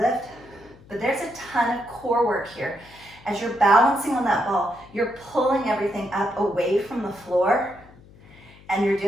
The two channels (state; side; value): noise; left; hum, 23 dB below the sound